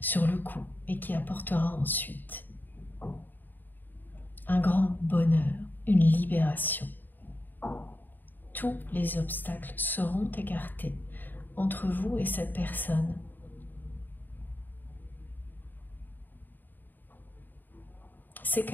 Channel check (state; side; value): late; right; 0.090 ms